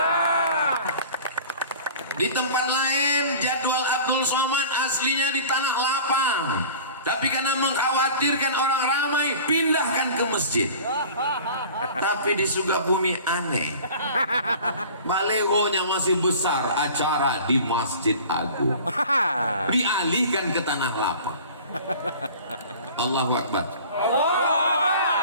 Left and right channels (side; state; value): both; inverted; correlation -0.42